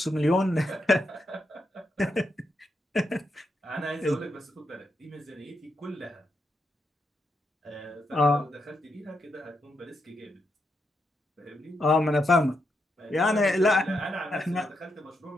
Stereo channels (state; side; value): normal; both; correlation 0.82